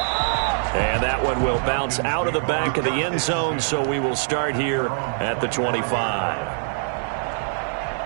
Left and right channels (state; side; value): silent; left; digital silence